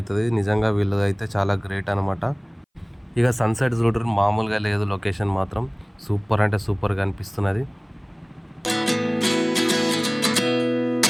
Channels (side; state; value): both; identical; correlation 1.00